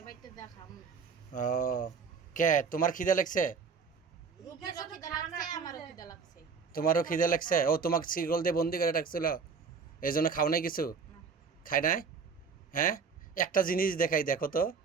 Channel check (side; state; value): left; quieter; 5.5 dB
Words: বাইতে দেখাম। ও কে তোমার খিদা লাগছে? রূপেরও খিদা লাগছে, আমারও খিদা লাগছে। তোমারও খিদা লাগছে? ও তোমাকে শিকল দিয়ে বন্দি করে রাখছিল, এই জন্য খাও নাই কিছু? না। খাই নাই? হ্যাঁ, একটা জিনিস দেখাই, দেখো তো।